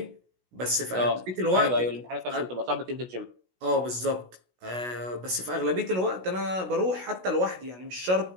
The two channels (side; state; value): left; late; 16 ms